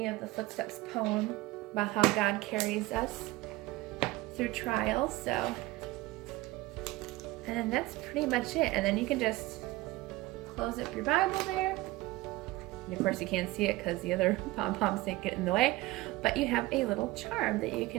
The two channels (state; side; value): quieter; left; 19.3 dB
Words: of the Footsteps poem about how God carries us through trials. So, and then that's pretty much it. And then you can just close up your Bible there. And of course you can't see it because the other pom-poms get in the way, but you have a little charm that you